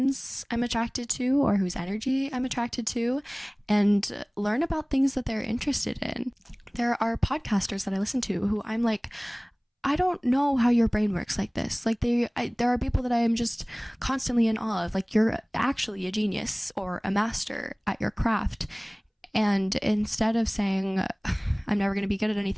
I'm attracted to or whose energy I'm attracted to and learn about things that they're interested in. There are podcasters that I listen to who I'm like, I don't know how your brain works like this. Like there are people that I am just constantly in awe of. Like, you're actually a genius or a master at your craft. And instead of saying, I'm never going to be good at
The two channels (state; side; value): identical; both; correlation 1.00